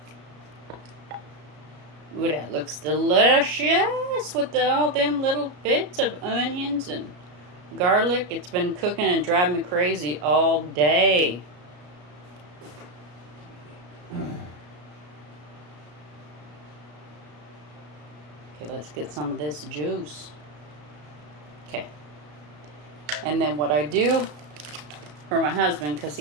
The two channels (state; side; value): late; left; 33 ms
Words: Ooh, that looks delicious with all them little bits of onions and garlic. It's been cooking and driving me crazy all day. Okay, let's get some of this juice. Okay. And then what I do for my husband, because